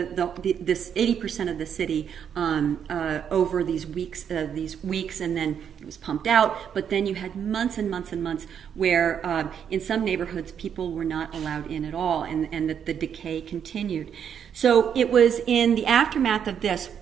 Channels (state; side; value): quieter; left; 8.2 dB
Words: 80% of the city over these weeks, and then it was pumped out. But then you had months and months and months where in some neighborhoods people were not allowed in at all, and that the decay continued. So it was in the aftermath of this,